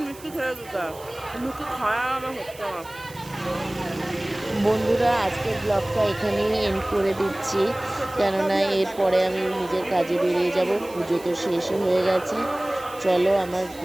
মিষ্টি খেয়ে দিতে, মুখে খাওয়া আমার হচ্ছে না। বন্ধুরা আজকের ব্লগটা এখানেই এন্ড করে দিচ্ছি, কেননা এরপরে আমি নিজের কাজে বেরিয়ে যাব, পুজো তো শেষ হয়ে গেছে। চলো আমার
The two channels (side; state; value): right; noise; hiss, 20 dB below the sound